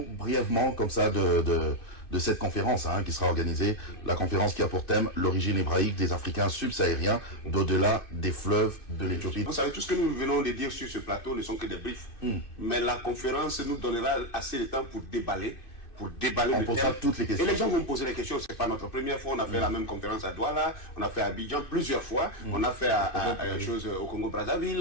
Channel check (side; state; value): right; late; 2.4 ms